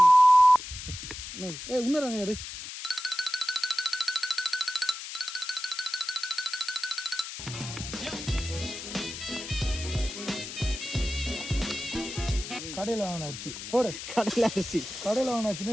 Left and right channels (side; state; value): left; noise; hiss, 9 dB below the sound